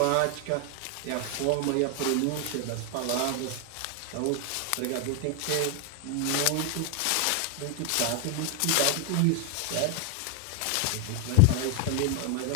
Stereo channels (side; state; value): both; different; correlation 0.01